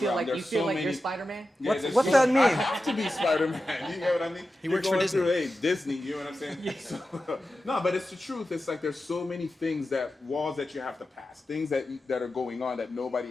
like there's you're many. Spider-Man? Yeah, What's there's that mean? I have to be Spider-Man. You get what I mean? He works You're for going Disney. through, hey, Disney. You know what I'm saying? So, no, but it's the truth. It's like there's so many things walls that you have to pass, things that are going on that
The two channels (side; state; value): both; normal; correlation 0.92